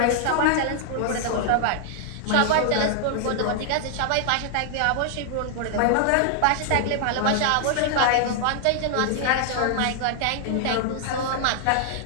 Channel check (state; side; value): different; both; correlation 0.00